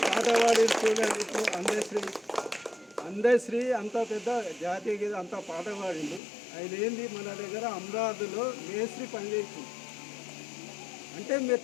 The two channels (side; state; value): right; drops out; at 6.2 s